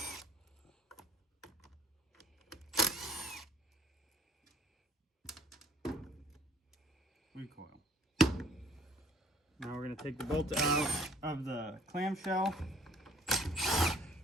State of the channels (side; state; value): both; normal; correlation 0.56